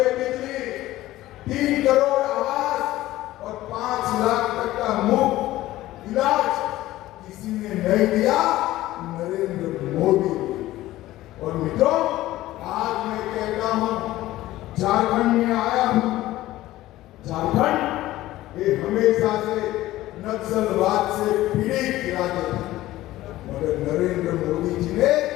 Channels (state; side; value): quieter; right; 16.0 dB